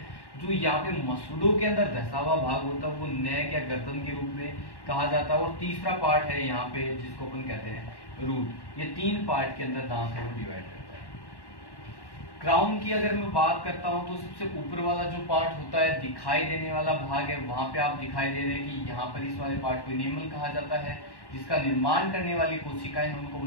जो यहाँ पे मसूड़ों के अंदर धसा हुआ भाग होता है वो नेक या गर्दन के रूप में कहा जाता है। और तीसरा पार्ट है यहाँ पे जिसको अपन कहते हैं रूट। ये 3 पार्ट के अंदर दांत है वो डिवाइड करता है। क्राउन की अगर मैं बात करता हूँ तो सबसे ऊपर वाला जो पार्ट होता है दिखाई देने वाला भाग है, वहां पे आप दिखाई दे रहे हैं कि यहाँ पर इस वाले पार्ट को इनेमल कहा जाता है, जिसका निर्माण करने वाली कोशिकाएं उनको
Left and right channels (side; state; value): right; late; 1.1 ms